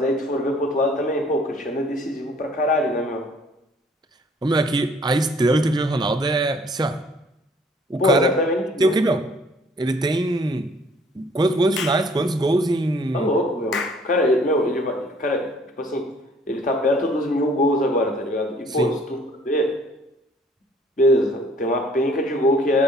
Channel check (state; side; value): normal; both; correlation 0.58